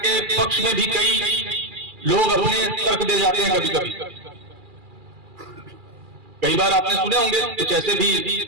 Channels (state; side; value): late; left; 2.4 ms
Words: पक्ष में भी कई लोग अपने तर्क दे जाते हैं। कभी कभी कई बार आपने सुने होंगे कुछ ऐसे भी